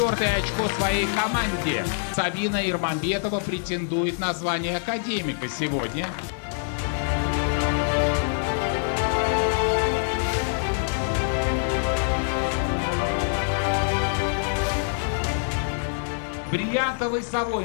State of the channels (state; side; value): silent; right; digital silence